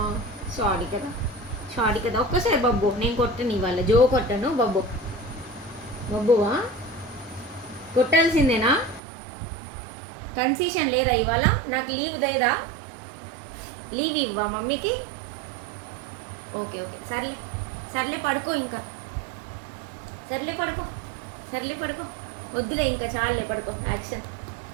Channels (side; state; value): left; drops out; at 9.0 s